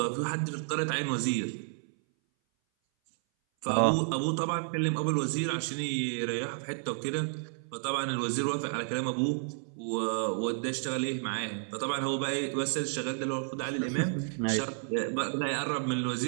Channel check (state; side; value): silent; left; 57 dB below the other